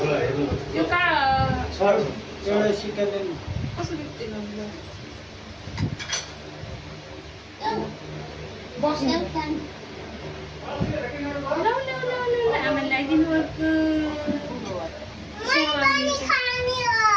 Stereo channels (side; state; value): both; identical; correlation 1.00